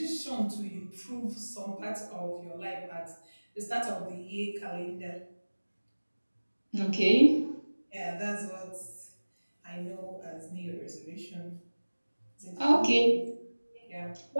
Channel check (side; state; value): both; inverted; correlation -1.00